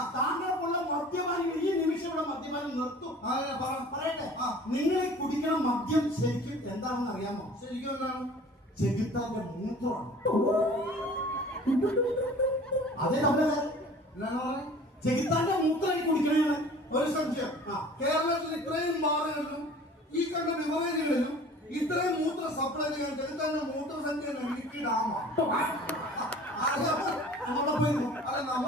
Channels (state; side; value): normal; both; correlation 0.46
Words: താങ്കൾക്കുള്ള മദ്യപാനം ഈ നിമിഷം ഇവിടെ മദ്യപാനം നിർത്തും. പറയട്ടെ, നിങ്ങൾ കുടിക്കുന്ന മദ്യം ശരിക്കും എന്താണെന്ന് അറിയാമോ? ശരിക്കും എന്താണ്? ചെകുത്താന്റെ മൂത്രമാണ്. അതേ നമ്മളെ ചെകുത്താന്റെ മൂത്രം കുടിക്കണേ. ഒരു സംശയം, കേരളത്തിൽ ഇത്രയും ബാറുകളിലും ഈ കണ്ട ബിവറേജുകളിലും ഇത്രയും മൂത്ര സപ്ലൈ ചെയ്യാൻ ചെകുത്താന്റെ മൂത്ര സംഖ്യ ഇടുക്കി ഡാമാണ്. അല്ല,